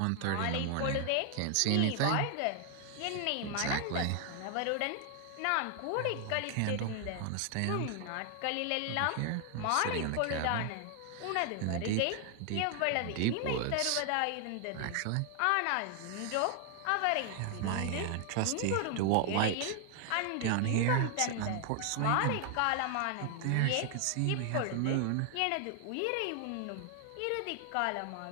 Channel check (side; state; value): both; different; correlation 0.00